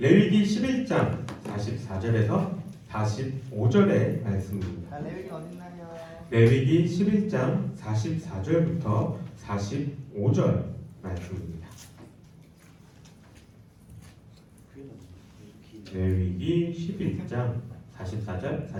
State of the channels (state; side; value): identical; both; correlation 1.00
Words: 11장 44절에서 45절의 말씀입니다. 레위기 어딨나요? 레위기 11장 44절부터 45절 말씀입니다. 레위기 11장 44절